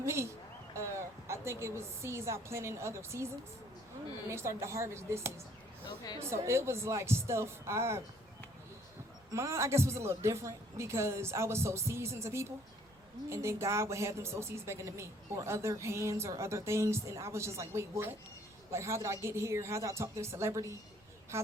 I think it was seeds I planted in other seasons, and they started to harvest this season. Okay. So it was like stuff mine I guess was a little different because I was so seasoned to people, and then God would have them sow seeds back into me, or other hands or other things, and I was just like, wait, what? Like, how did I get here? How did I talk to a celebrity? How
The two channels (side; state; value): right; noise; rumble, 28 dB below the sound